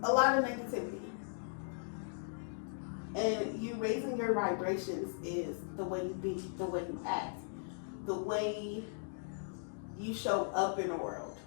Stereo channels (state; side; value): silent; right; digital silence